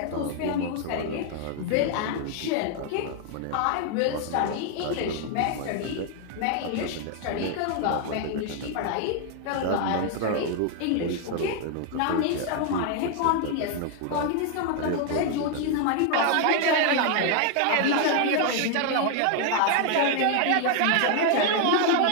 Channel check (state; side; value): different; both; correlation 0.00